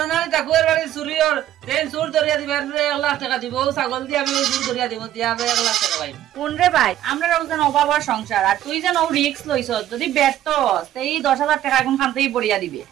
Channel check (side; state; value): left; quieter; 12.4 dB